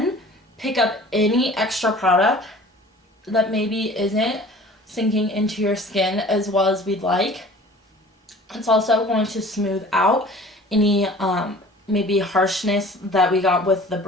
pick up any extra product that maybe isn't sinking into your skin as well as we'd like. It's also going to smooth out any maybe harshness that we got with the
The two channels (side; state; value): both; normal; correlation 0.46